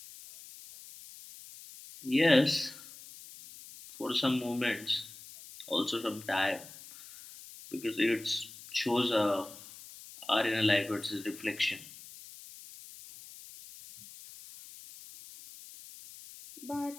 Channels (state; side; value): noise; left; hiss, 17 dB below the sound